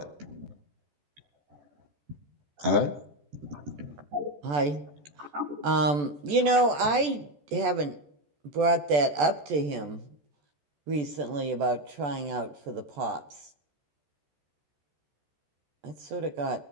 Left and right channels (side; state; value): left; late; 14 ms